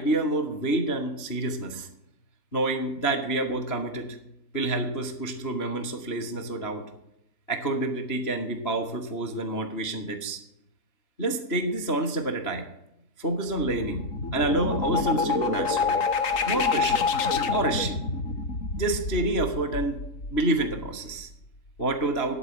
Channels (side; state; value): right; late; 3.0 ms